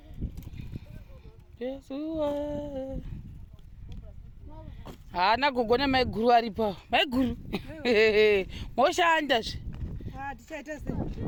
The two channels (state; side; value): identical; both; correlation 1.00